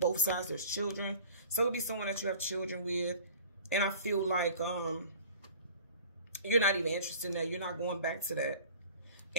sides, there's children. So it could be someone that you have children with. And I feel like you're not even interested in that. You're not going back to that.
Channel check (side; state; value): both; inverted; correlation -0.44